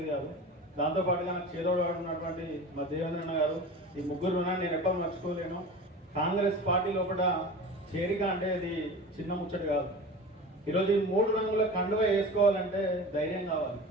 కాదు. దాంతోపాటుగా నాకు చేదోడు ఉన్నటువంటి మా దేవేంద్రన్న గారు, ఈ 3 ఉన్నాను నేను ఎప్పుడు మర్చిపోలేను. కాంగ్రెస్ పార్టీ లోపల చేరిక అంటే ఇది చిన్న ముచ్చట కాదు. ఈరోజు ఈ 3 రంగుల కండువ వేసుకోవాలంటే ధైర్యం కావాలి,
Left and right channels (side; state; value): both; normal; correlation 0.34